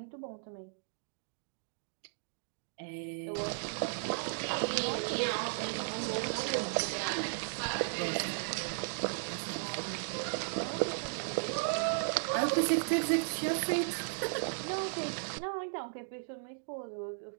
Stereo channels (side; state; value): left; silent; digital silence